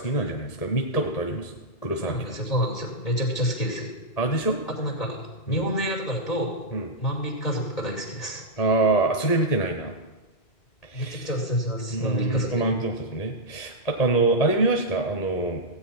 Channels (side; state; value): right; late; 2.2 ms